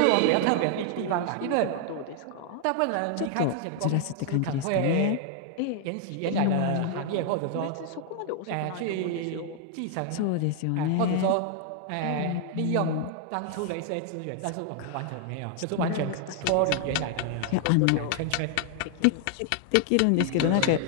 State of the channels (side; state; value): both; different; correlation 0.00